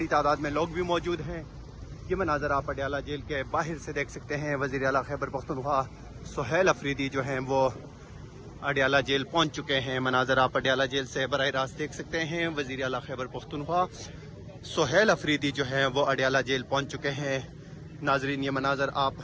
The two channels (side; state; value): both; identical; correlation 1.00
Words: تعداد میں لوگ بھی موجود ہیں. یہ مناظر آپ اڈیالہ جیل کے باہر سے دیکھ سکتے ہیں. وزیر اعلیٰ خیبر پختونخوا سہیل افریدی جو ہیں وہ اڈیالہ جیل پہنچ چکے ہیں. مناظر آپ اڈیالہ جیل سے براہ راست دیکھ سکتے ہیں. وزیر اعلیٰ خیبر پختونخوا سہیل افریدی جو ہیں وہ اڈیالہ جیل پہنچ چکے ہیں. ناظرین یہ مناظر آپ